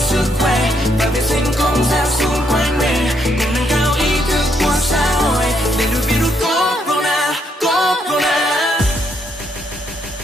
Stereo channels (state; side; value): normal; both; correlation 0.74